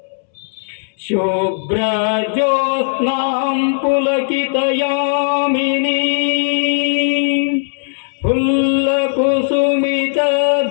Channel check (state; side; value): silent; right; 68 dB below the other